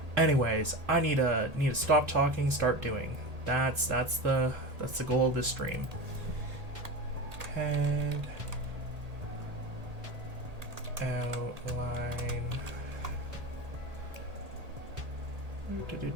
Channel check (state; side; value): late; left; 1.8 ms